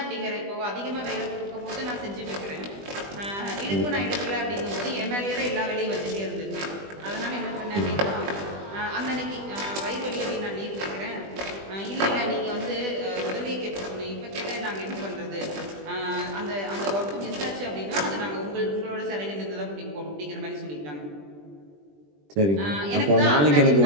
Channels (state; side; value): late; left; 20 ms